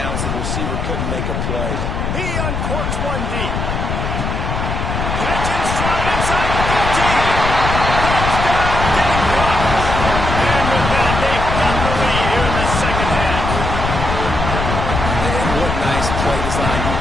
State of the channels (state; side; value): noise; left; rumble, 3 dB below the sound